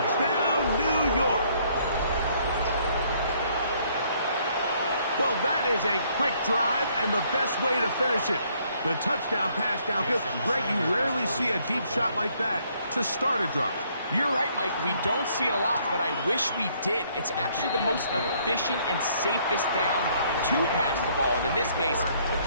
New York. Well, that is a quick drive and the best way to finish it. The touchdown pass downfield. Greg, you rarely see a deep shot like that to start a drive. You're right, Mike. We don't see it a lot, but I wish we did. It's actually the most efficient and safest down to pass the ball. And in this case, the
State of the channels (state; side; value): inverted; both; correlation -0.66